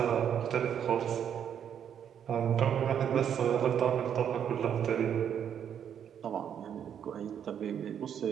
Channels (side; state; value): left; quieter; 8.8 dB